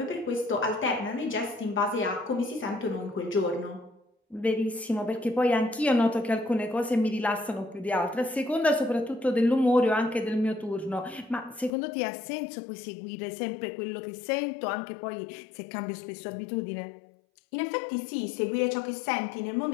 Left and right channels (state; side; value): drops out; right; at 11.7 s